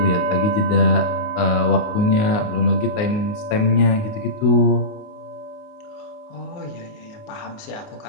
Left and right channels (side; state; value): right; late; 29 ms